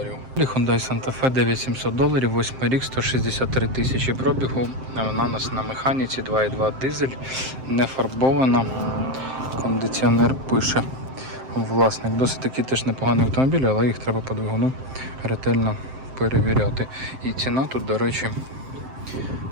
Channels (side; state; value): left; late; 7.6 ms